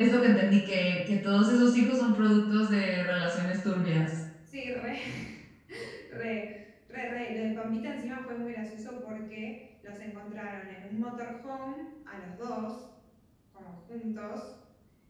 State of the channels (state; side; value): identical; both; correlation 1.00